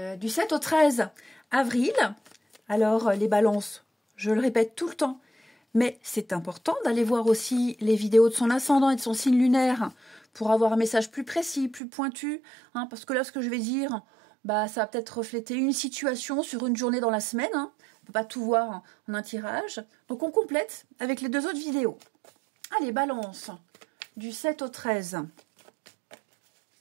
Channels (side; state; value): left; drops out; at 11.8 s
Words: 13 avril. Alors les balances, je le répète tout le temps, mais c'est important d'aller voir aussi les vidéos de son ascendant et de son signe lunaire pour avoir un message plus précis, plus pointu, hein, parce que là ce que je vais dire, ça va peut-être refléter une situation sur une journée dans la semaine, hein. On ne peut pas tout voir en un tirage, donc on complète avec les deux autres vidéos. Allez, balance, du 7 au 13.